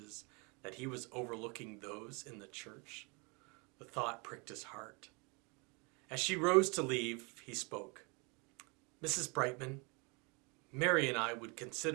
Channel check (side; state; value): left; quieter; 30.6 dB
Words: that he was overlooking those in the church? The thought pricked his heart. As she rose to leave, he spoke. "Mrs. Brightman, Mary and I would